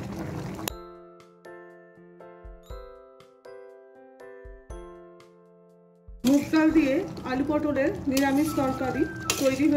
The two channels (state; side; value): identical; both; correlation 1.00